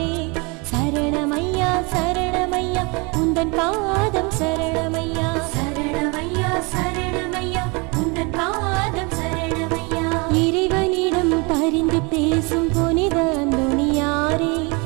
சரணமையா சரணமையா உந்தன் பாதம் சரணமையா, சரணமையா சரணமையா உந்தன் பாதம் சரணமையா. இறைவனிடம் பரிந்து பேசும் புனித அந்தோணியாரே,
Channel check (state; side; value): quieter; left; 29.2 dB